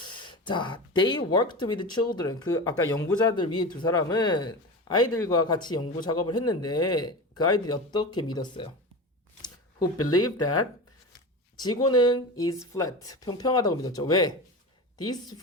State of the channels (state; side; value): normal; both; correlation 0.27